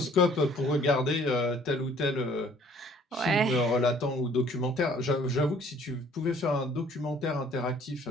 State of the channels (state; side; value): normal; both; correlation 0.57